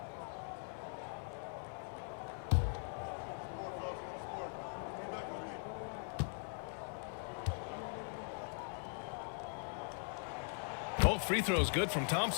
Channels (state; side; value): silent; right; 50 dB below the other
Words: Both free throws good from